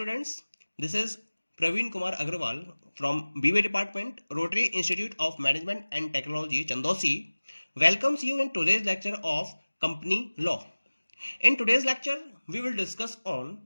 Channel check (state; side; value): inverted; both; correlation -1.00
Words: this is Praveen Kumar Agrawal from BA Department, Rotary Institute of Management and Technology, Chandosi, welcomes you in today's lecture of Company Law. In today's lecture, we will discuss on